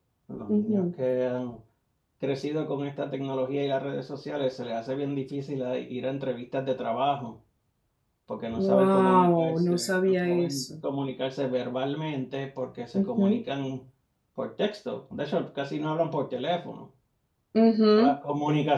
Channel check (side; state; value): both; identical; correlation 1.00